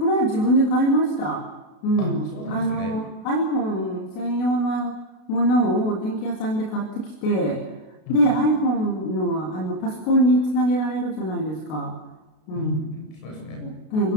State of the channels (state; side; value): late; right; 32 ms